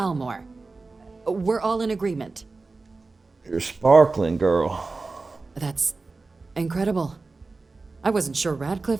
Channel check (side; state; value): left; quieter; 3.7 dB